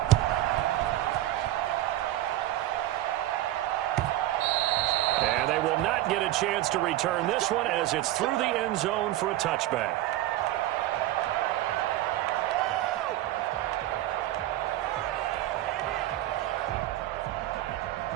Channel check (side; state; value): left; quieter; 14.9 dB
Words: And they will not get a chance to return this one as it's through the end zone for a touchback.